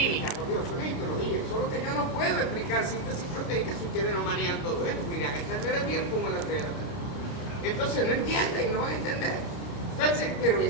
por Dios, eso es histología. Solo que yo no puedo explicar síntesis proteica si ustedes no manejan todo eso. Irán a entender el bien como la 3 de la tarde. Entonces no entienden, no van a entender. Entonces, pero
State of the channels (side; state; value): right; late; 29 ms